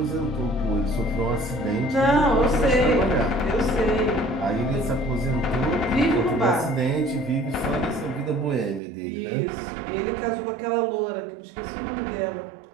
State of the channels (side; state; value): left; drops out; at 8.8 s